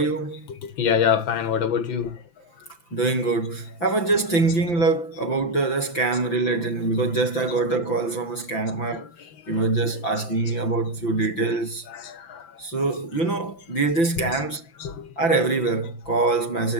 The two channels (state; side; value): late; right; 5.9 ms